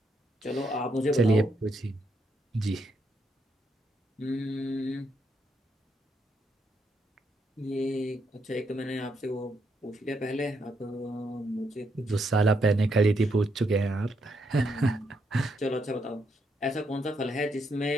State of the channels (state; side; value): normal; both; correlation 0.78